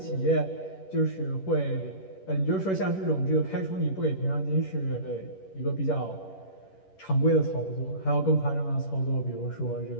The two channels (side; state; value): right; late; 11 ms